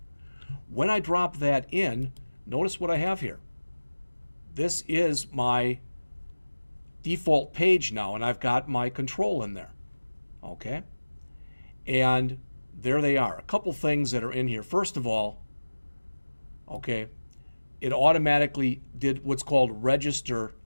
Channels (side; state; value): both; inverted; correlation -1.00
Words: When I drop that in, notice what I have here. This is my default page now, and I've got my control in there. Okay. And there they are. A couple things that are in here. First of all, okay, it automatically did what's called register